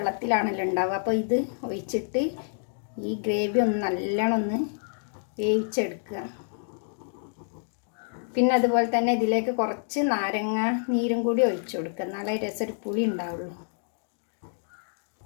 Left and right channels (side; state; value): right; silent; digital silence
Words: ഉണ്ടാവുക. അപ്പോൾ ഇത് ഒഴിച്ചിട്ട് ഈ ഗ്രേവി ഒന്ന് നല്ലോണം ഒന്ന് വേവിച്ചെടുക്കുക. പിന്നെ അതുപോലെ തന്നെ ഇതിലേക്ക് കുറച്ച് നാരങ്ങ നീരും കൂടി ഒഴിച്ചു കൊടുക്കുക. എന്നാലേ രസം പുളി ഉണ്ടാവുള്ളൂ.